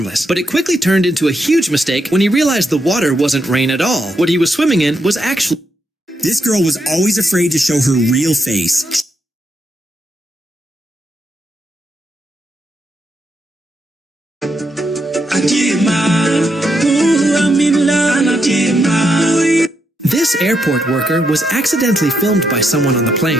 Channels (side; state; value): both; normal; correlation 0.80